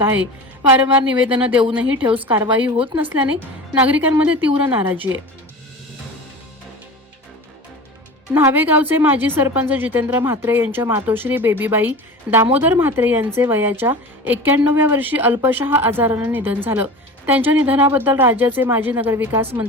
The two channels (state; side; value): normal; both; correlation 0.33